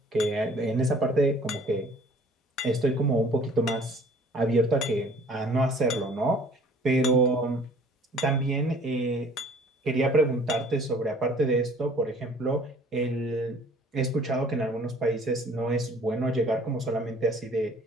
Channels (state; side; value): normal; both; correlation 0.53